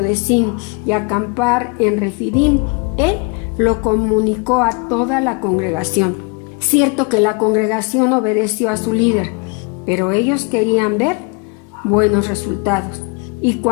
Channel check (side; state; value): right; quieter; 30.8 dB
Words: de Sin y acampar en Refidim, él lo comunicó a toda la congregación. Cierto que la congregación obedeció a su líder, pero ellos querían ver buenos resultados. Y